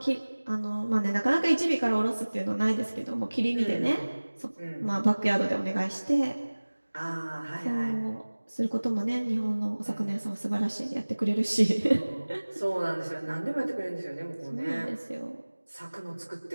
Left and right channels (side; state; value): both; inverted; correlation -1.00